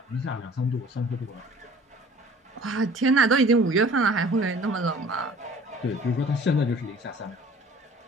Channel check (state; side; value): normal; both; correlation 0.49